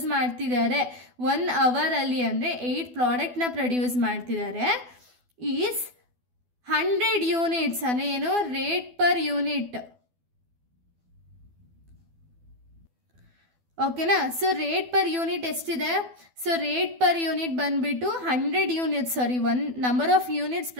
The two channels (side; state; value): left; late; 12 ms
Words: ಮಾಡ್ತಿದ್ದಾರೆ 1 hour ಅಲ್ಲಿ ಅಂದರೆ 8 ಪ್ರಾಡಕ್ಟ್ನ ಪ್ರೊಡ್ಯೂಸ್ ಮಾಡ್ತಿದ್ದಾರೆ. ಈಸ್ 100 units ಅಂದರೆ ಏನು, ರೇಟ್ ಪರ್ ಯೂನಿಟ್, ಓಕೆನಾ. ಸೊ ರೇಟ್ ಪರ್ ಯೂನಿಟ್ ಎಷ್ಟಿದೆ, ಸೊ ರೇಟ್ ಪರ್ ಯೂನಿಟ್ ಬಂದ್ಬಿಟ್ಟು 100 units, sorry, one number of units